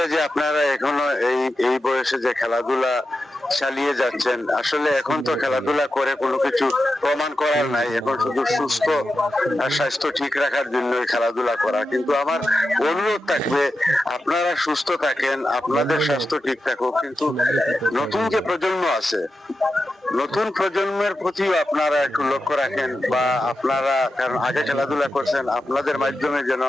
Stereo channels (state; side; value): normal; both; correlation 0.90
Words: যে আপনারা এখনো এই বয়সে যে খেলাধুলা চালিয়ে যাচ্ছেন। আসলে এখন তো খেলাধুলা করে কোনো কিছু প্রমাণ করার নাই, এখন শুধু সুস্থ আর স্বাস্থ্য ঠিক রাখার জন্য খেলাধুলা করা। কিন্তু আমার অনুরোধ থাকবে আপনারা সুস্থ থাকেন, আপনাদের স্বাস্থ্য ঠিক থাকুক, কিন্তু নতুন যে প্রজন্ম আছে নতুন প্রজন্মের প্রতিও আপনারা একটু লক্ষ্য রাখেন, বা আপনারা কারণ আগে খেলাধুলা করছেন, আপনাদের মাধ্যমে যেন